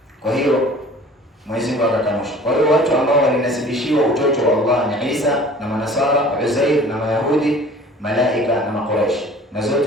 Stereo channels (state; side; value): normal; both; correlation 0.47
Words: Kwa hiyo Mwenyezi Mungu akakanusha. Kwa hiyo watu ambao walinasibishiwa utoto wa Allah ni Isa na Manasara, Uzair na Mayahudi, malaika na Makuraish, na